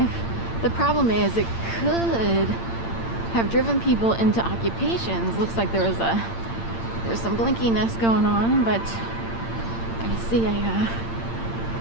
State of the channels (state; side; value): late; right; 8.8 ms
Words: The problem is it could have driven people into occupations. Looks like there's some blinkiness going on, but I see a